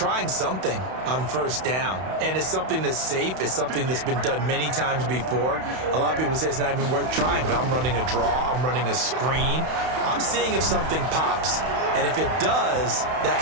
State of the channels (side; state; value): left; late; 31 ms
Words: something on first down, and it's something that's safe. It's something that's been done many times before. A lot of people say it's not even worth trying, but I'm running a draw. I'm running a screen. I'm seeing if something pops. And if it does, that